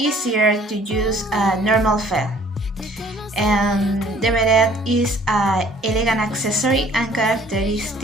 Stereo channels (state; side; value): normal; both; correlation 0.56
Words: to use a normal felt. And the beret is an elegant accessory and